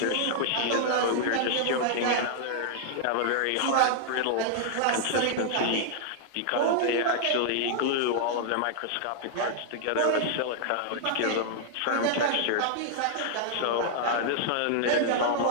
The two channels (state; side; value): different; both; correlation -0.01